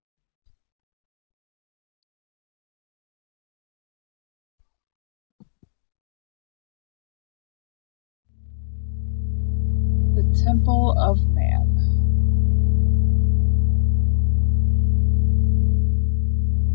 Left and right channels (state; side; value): silent; right; digital silence